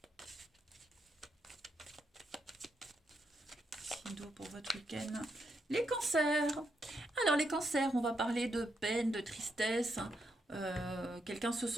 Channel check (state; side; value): normal; both; correlation 0.80